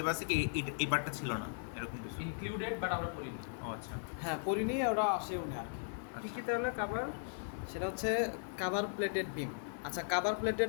কি এই পার্টটা ছিল না এরকম কিছু? ইনক্লুডেড বাট আমরা পড়িনি। ও আচ্ছা। হ্যাঁ, পরিনি, ওরা আসেও না আর কি। কি কি তাহলে কাভার? সেটা হচ্ছে কাভার প্লেটেড বিম। আচ্ছা, কাভার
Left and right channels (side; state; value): right; silent; digital silence